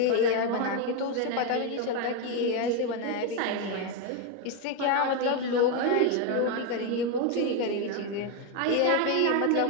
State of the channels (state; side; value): different; both; correlation 0.02